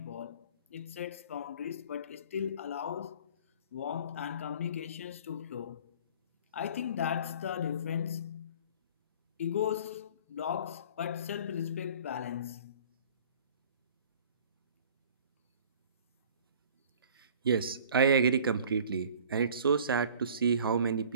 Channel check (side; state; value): both; inverted; correlation -0.48